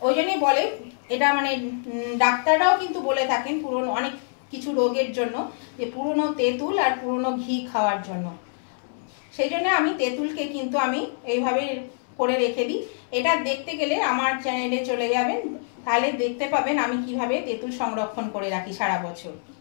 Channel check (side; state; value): right; silent; 62 dB below the other